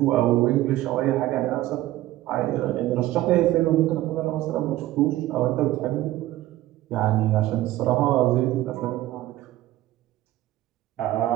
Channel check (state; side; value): quieter; left; 15.6 dB